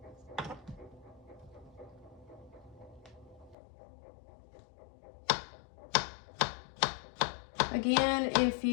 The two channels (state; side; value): drops out; right; at 3.6 s